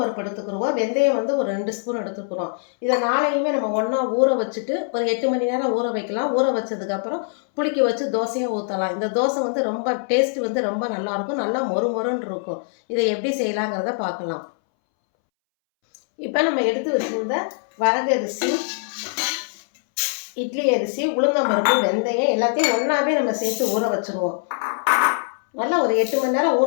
எடுத்துக்கிறோம். வெந்தயம் ஒரு 2 ஸ்பூன் எடுத்துக்கிறோம். இதை நாளையுமே நம்ம ஒன்றா ஊற வச்சுட்டு ஒரு 8 மணி நேரம் ஊற வைக்கலாம். ஊற வச்சதுக்கப்புறம் புளிக்க வச்சு தோசையாக ஊற்றலாம். இந்த தோசை ரொம்ப டேஸ்ட் ரொம்ப நல்லாயிருக்கும், நல்லா மொறு மொறுன்னு இருக்கும். இதை எப்படி செய்யலாங்கிறத பார்க்கலாம். இப்போ நம்ம எடுத்து வச்சுருந்த வரகரிசி, இட்லி அரிசி, உளுந்தம்பருப்பு, வெந்தயம் எல்லாத்தையும் ஒன்றாவே நம்ம சேர்த்து ஊற வச்சுருவோம். நல்லா ஒரு 8 மணி நேரம்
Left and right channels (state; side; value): silent; right; 64 dB below the other